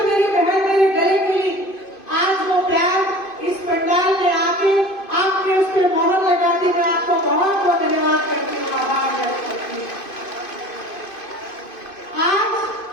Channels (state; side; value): late; right; 2.5 ms